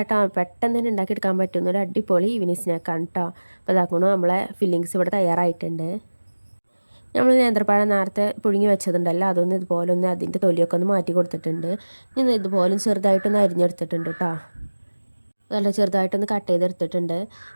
പെട്ടെന്ന് തന്നെ ഉണ്ടാക്കിയെടുക്കാൻ പറ്റുന്ന ഒരു അടിപൊളി ഈവനിങ് സ്നാക്കാണ് കേട്ടോ. അപ്പോൾ അതാക്കണം നമ്മളെ ഫില്ലിങ്സ് ഇവിടെ തയ്യാറായിട്ടുണ്ട്. നമ്മൾ നേന്ത്രപ്പഴം നേരത്തെ പുഴുങ്ങി വെച്ചതുണ്ടല്ലോ അതൊന്ന് ഇതുപോലെ ഒന്ന് അതിൻ്റെ തൊലിയൊക്കെ ഒന്ന് മാറ്റി കൊടുത്തിട്ടുണ്ട്. ഞാൻ ഇതുപോലെ ചെറുതായിട്ടൊന്ന് അരിഞ്ഞെടുത്തിട്ടുണ്ട് കേട്ടോ. നല്ല ചെറുതായിട്ടൊന്ന് കട്ട് ചെയ്തെടുത്തിട്ടുണ്ട്.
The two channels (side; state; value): both; inverted; correlation -1.00